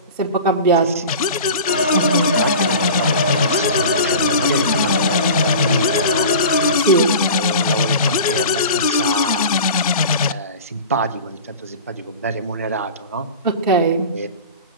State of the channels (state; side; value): inverted; both; correlation -0.36